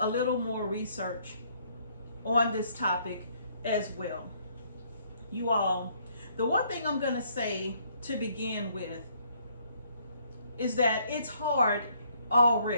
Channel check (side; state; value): both; inverted; correlation -0.66